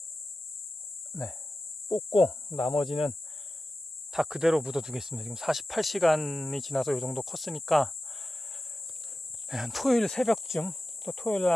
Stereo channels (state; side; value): normal; both; correlation 0.93